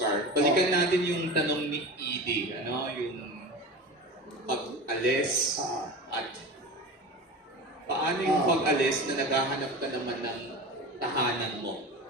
balikan natin yung tanong ni Edie, ano, yung pag-alis at paano yung pag-alis na naghahanap ka naman ng tahanan mo?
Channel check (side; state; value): both; normal; correlation 0.31